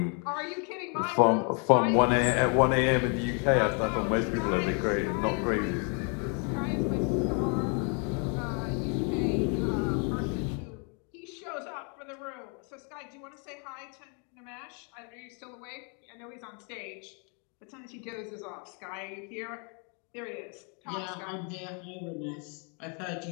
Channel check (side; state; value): right; quieter; 37.6 dB